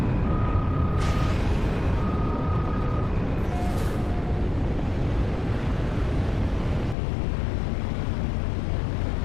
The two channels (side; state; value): right; drops out; at 7.0 s